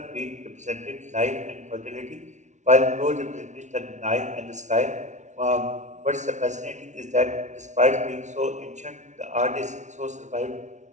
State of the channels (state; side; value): late; left; 0.35 ms